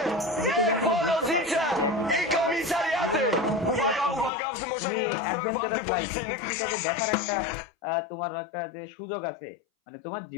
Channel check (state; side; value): drops out; right; at 4.3 s